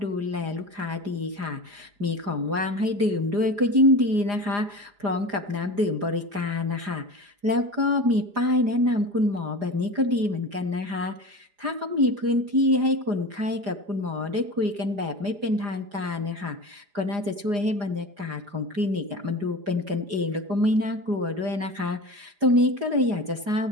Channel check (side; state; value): left; late; 4.9 ms